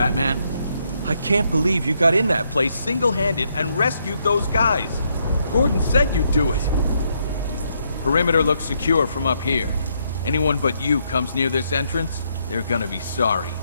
I can't believe you got in that place single-handed and rescued those guys. Gordon said you'd do it. Perimeter looks secure from up here. Anyone but you comes near this entrance, they're gonna be sorry.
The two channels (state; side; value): inverted; both; correlation -0.75